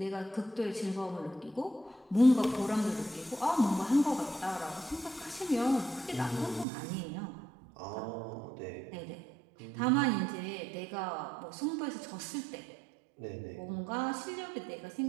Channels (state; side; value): drops out; left; at 6.7 s